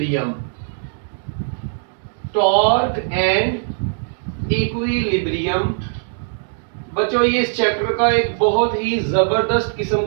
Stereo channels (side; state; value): left; silent; digital silence